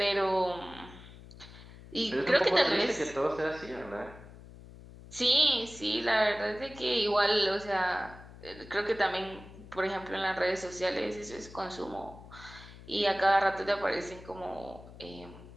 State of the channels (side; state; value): left; noise; hum, 18 dB below the sound